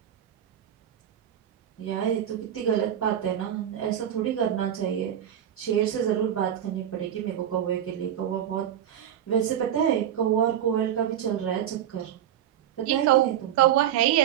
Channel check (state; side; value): quieter; left; 10.4 dB